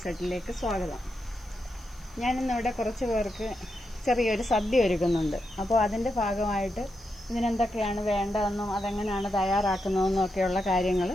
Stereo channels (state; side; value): noise; left; hiss, 30 dB below the sound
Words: സെറ്റിലേക്ക് സ്വാഗതം. ഞാനിന്നിവിടെ കുറച്ച് പേർക്ക് ചെറിയൊരു സദ്യ ഒരുക്കുന്നുണ്ട്. അപ്പോൾ അതിൻ്റെ ഭാഗമായിട്ട് ഇതിനെന്തൊക്കെയാണ് വേണ്ടതെന്നും അതെങ്ങനെയാണ് തയ്യാറാക്കുന്നതെന്നും ഒക്കെയുള്ള കാര്യങ്ങൾ